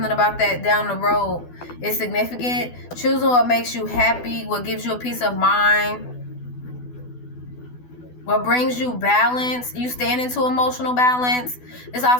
about that down the road is significant. Choosing what makes you happy, what gives you a peace of mind, what brings you balance. You stand into emotional balance. This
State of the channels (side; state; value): right; late; 12 ms